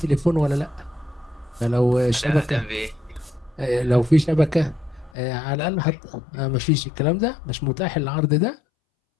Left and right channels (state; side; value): drops out; right; at 5.1 s